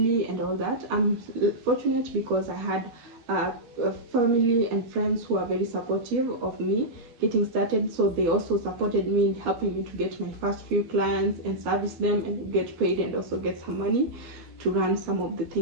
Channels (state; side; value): late; left; 12 ms